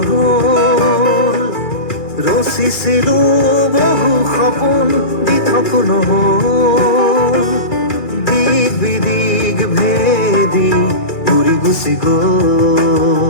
ৰচিছিলো বহু সপোন দিঠক নহ'ল দিক বিদিক ভেদি উৰি গুচি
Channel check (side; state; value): right; late; 2.4 ms